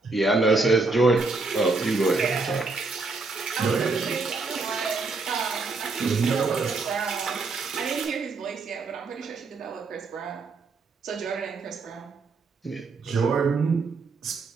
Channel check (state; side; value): quieter; left; 3.9 dB